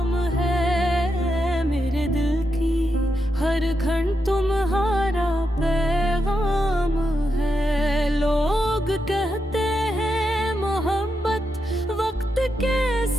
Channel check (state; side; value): normal; both; correlation 0.85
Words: है, मेरे दिल की हर घंट तुम्हारा पैगाम है। लोग कहते हैं मोहब्बत वक्त के